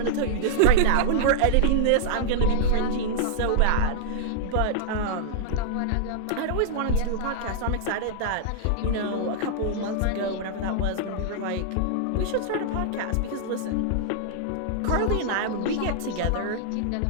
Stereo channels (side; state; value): both; different; correlation -0.01